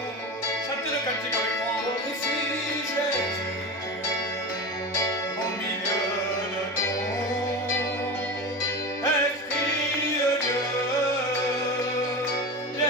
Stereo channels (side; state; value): both; normal; correlation 0.26